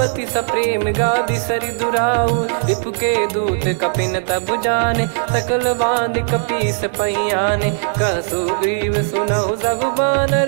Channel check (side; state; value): left; silent; digital silence